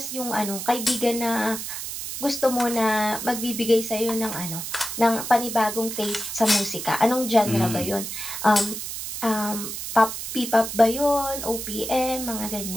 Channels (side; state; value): right; noise; hiss, 6 dB below the sound